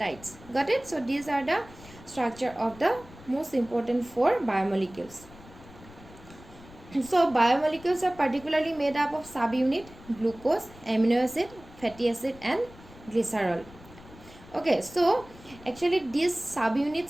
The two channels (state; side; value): noise; left; rumble, 20 dB below the sound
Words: Got it? So these are the structure of the most important four biomolecules. So biomolecules are particularly made up of subunit glucose, amino acid, fatty acid and glycerol. Okay, so actually these